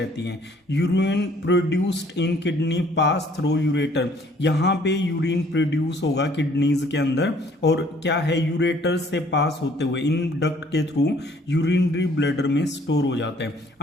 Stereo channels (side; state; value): both; normal; correlation 0.59